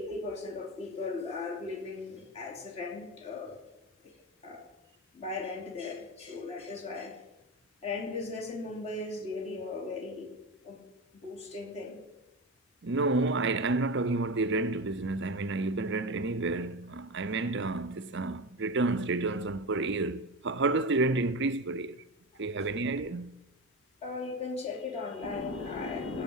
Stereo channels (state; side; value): normal; both; correlation 0.22